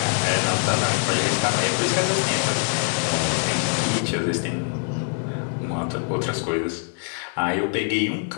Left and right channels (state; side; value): silent; right; 55 dB below the other